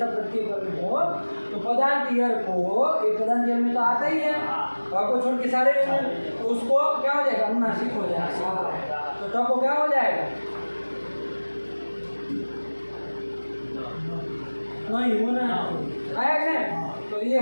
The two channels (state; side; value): inverted; both; correlation -1.00